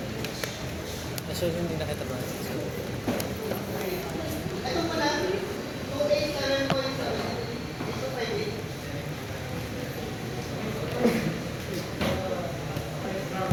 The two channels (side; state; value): both; identical; correlation 1.00